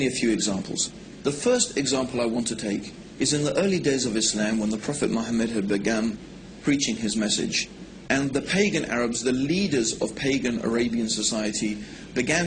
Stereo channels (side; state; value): both; identical; correlation 1.00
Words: a few examples. The first example I want to take is in the early days of Islam, when the Prophet Muhammad had begun preaching his message, and the pagan Arabs, the leaders of pagan Arabian society,